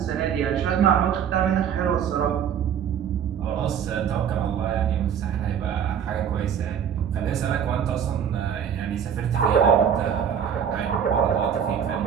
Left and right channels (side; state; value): left; quieter; 8.3 dB